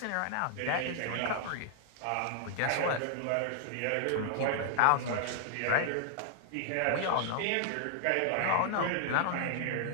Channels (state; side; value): different; both; correlation -0.01